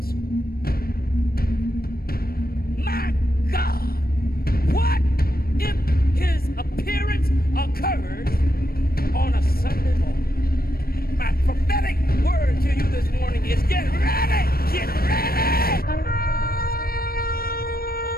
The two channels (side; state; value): right; late; 0.44 ms